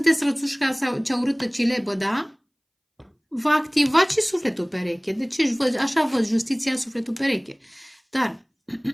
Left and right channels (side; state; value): both; identical; correlation 1.00